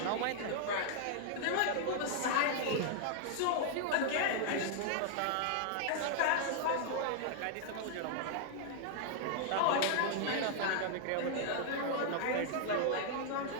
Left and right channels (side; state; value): both; different; correlation -0.01